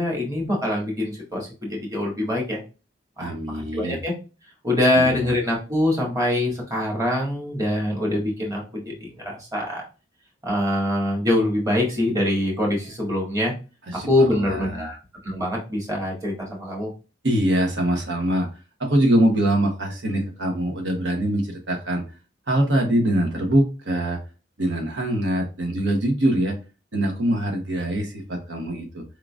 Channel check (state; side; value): normal; both; correlation 0.70